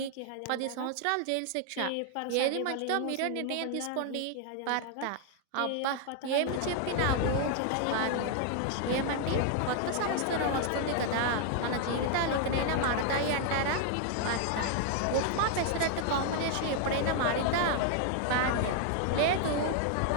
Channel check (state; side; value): different; both; correlation 0.00